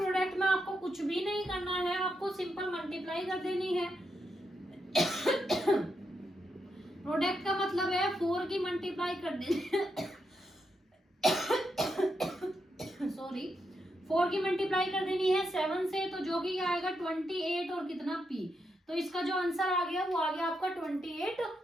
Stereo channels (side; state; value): both; normal; correlation 0.83